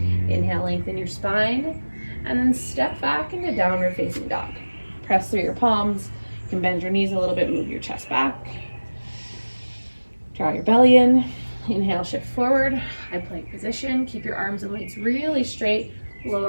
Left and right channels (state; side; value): inverted; both; correlation -1.00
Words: Inhale, lengthen your spine. And then step back into downward facing dog. Press through your palms. You can bend your knees a little bit, move your chest back. Draw your belly in. Inhale, shift forward. High plank position. Keep your arms and legs really straight.